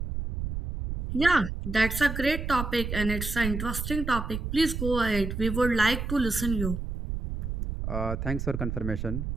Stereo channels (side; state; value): right; noise; rumble, 4 dB below the sound